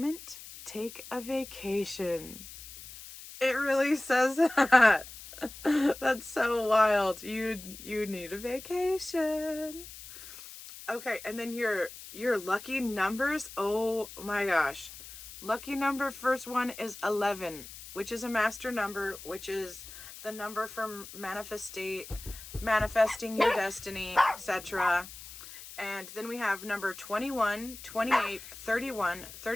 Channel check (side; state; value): left; noise; hiss, 14 dB below the sound